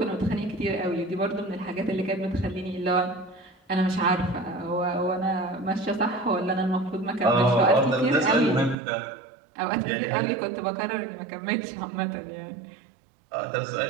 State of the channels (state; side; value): drops out; left; at 8.8 s